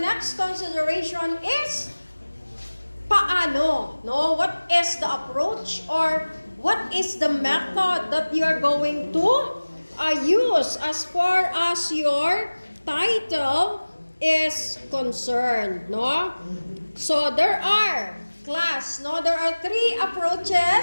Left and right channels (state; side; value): inverted; both; correlation -1.00